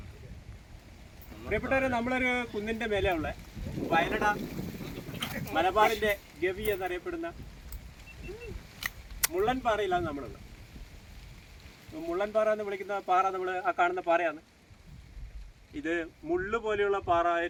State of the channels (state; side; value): identical; both; correlation 1.00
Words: പ്രിയപ്പെട്ടവരെ, നമ്മളൊരു കുന്നിൻ്റെ മേലെയുള്ള വയലട മലബാറിൻ്റെ ഗവി എന്നറിയപ്പെടുന്ന മുള്ളൻപാറയിലാണ് നമ്മളുള്ളത്. മുള്ളൻപാറ എന്ന് വിളിക്കുന്ന പാറ നമ്മൾ ആ കാണുന്ന പാറയാണ്. ഇത് മുള്ളു പോലെയുള്ള പാറ,